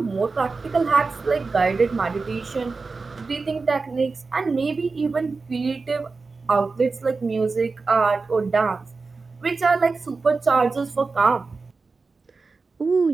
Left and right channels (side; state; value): left; quieter; 4.1 dB